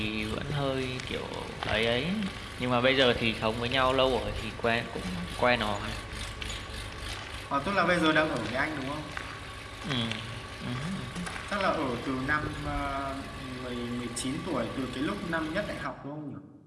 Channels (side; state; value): both; identical; correlation 1.00